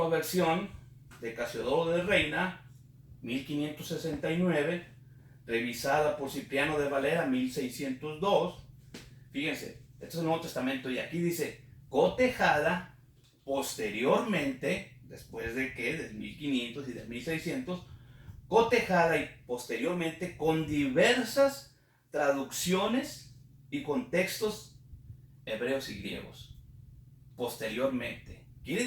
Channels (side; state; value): both; identical; correlation 1.00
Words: versión de Casiodoro de Reina, 1569, revisada por Cipriano de Valera, 1602. Fíjense, este es el Nuevo Testamento y aquí dice, cotejada posteriormente, después de que, del 1500 y del 1600, cotejada y posteriormente con diversas traducciones y contextos hebreos y griegos. Posteriormente.